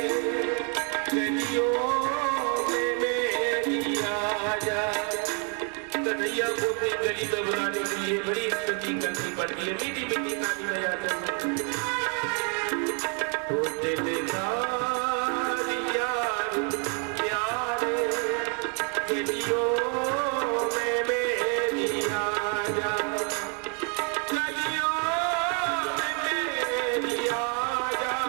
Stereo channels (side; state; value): left; quieter; 38.5 dB